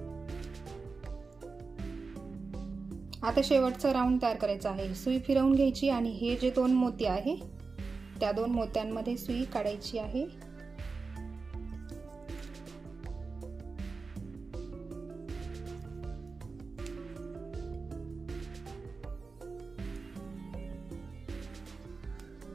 आता शेवटचा राऊंड तयार करायचा आहे. सुई फिरवून घ्यायची आणि हे जे 2 मोती आहे त्या 2 मोत्यांमध्ये सुई काढायची आहे.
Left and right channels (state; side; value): quieter; left; 4.3 dB